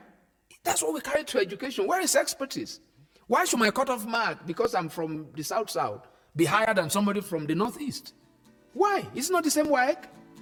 That's what we carry to education. Where is expertise? Why should my cutoff mark, because I'm from the South, be higher than somebody from the Northeast? Why? It's not the same work.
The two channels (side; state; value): both; identical; correlation 1.00